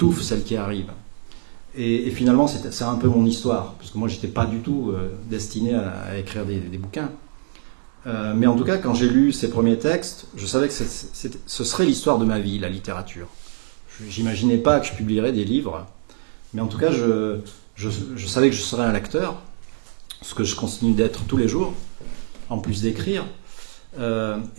celle qui arrive. Et finalement, c'est un peu mon histoire, parce que moi, je n'étais pas du tout destiné à écrire des bouquins. Mais en tout cas, quand j'ai lu ces premiers textes, je savais que ce serait l'histoire de ma vie, la littérature. Je n'imaginais pas que je publierais des livres, mais en tout cas, je savais que je serais un lecteur, ce que je continue d'être tous les jours, en plus d'écrire.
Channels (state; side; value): silent; left; 63 dB below the other